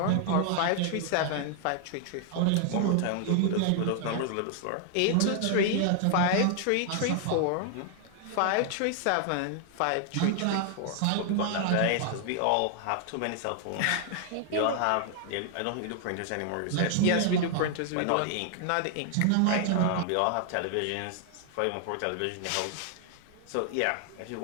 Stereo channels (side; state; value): both; different; correlation 0.00